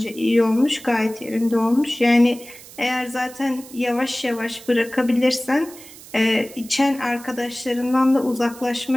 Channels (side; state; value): right; noise; hiss, 18 dB below the sound